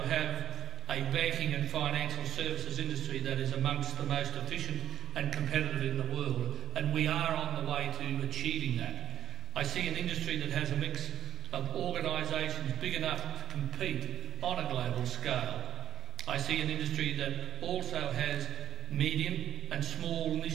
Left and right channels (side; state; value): left; quieter; 10.7 dB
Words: have a banking and financial services industry that is amongst the most efficient and competitive in the world, and we are on the way to achieving that. I see an industry that has a mix of organisations big enough to compete on a global scale. I see an industry that also has medium and small